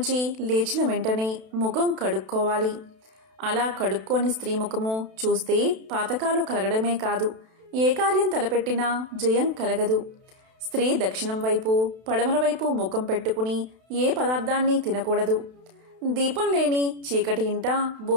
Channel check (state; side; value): late; left; 32 ms